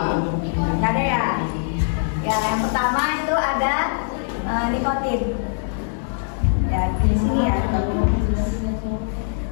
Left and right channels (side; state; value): right; silent; 64 dB below the other